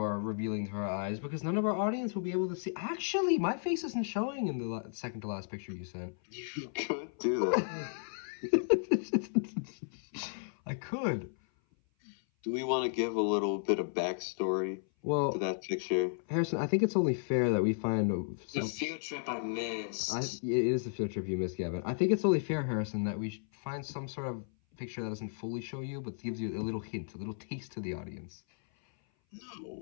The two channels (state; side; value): silent; right; 55 dB below the other